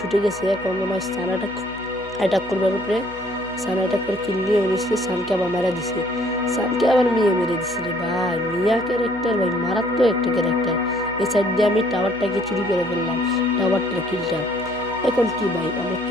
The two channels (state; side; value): noise; left; hum, 19 dB below the sound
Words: গেছে। এখন মনে হয় সানাটা অ্যাটাক করবার উপরে, সান অ্যাটাক করে কিল নিয়ে উঠেছে, সানকে আবার মেরে দিছে, সানকে আবার মিয়া মেরে দিছে রে ভাই। মিয়া ক্যারেক্টার ভাই মারাত্মক একটা ক্যারেক্টার। এই সাইড দিয়ে আমি টাওয়ারটাকে চুরি করে ফেললাম, টাওয়ারটার কিলটা। এখন কি ভাই, আমার